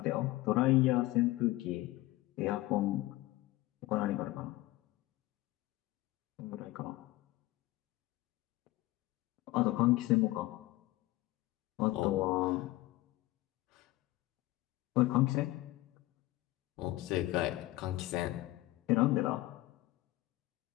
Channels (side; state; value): right; quieter; 18.3 dB